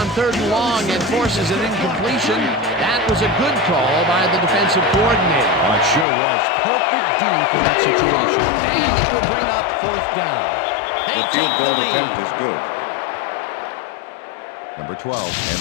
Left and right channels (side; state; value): right; drops out; at 6.1 s